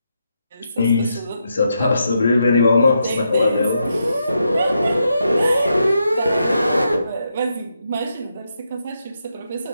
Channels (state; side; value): inverted; both; correlation -0.82